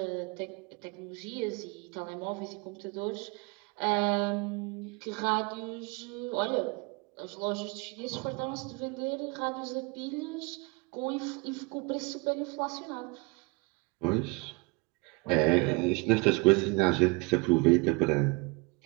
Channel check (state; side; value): quieter; left; 29.0 dB